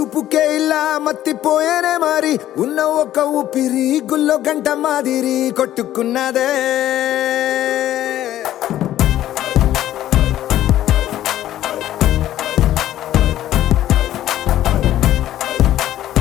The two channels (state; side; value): quieter; right; 13.0 dB